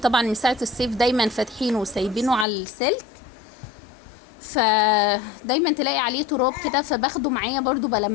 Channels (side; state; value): right; drops out; at 2.5 s